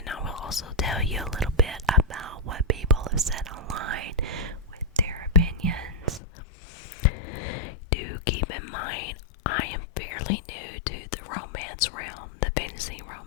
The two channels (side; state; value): right; drops out; at 6.2 s